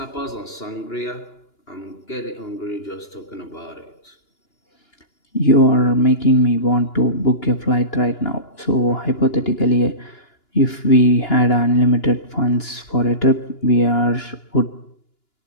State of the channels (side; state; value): right; late; 2.9 ms